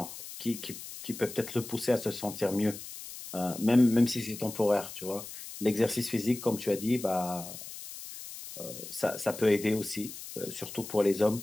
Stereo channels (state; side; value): noise; left; hiss, 12 dB below the sound